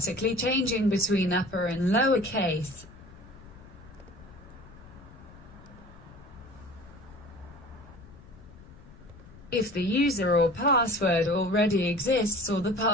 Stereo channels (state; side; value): noise; left; rumble, 20 dB below the sound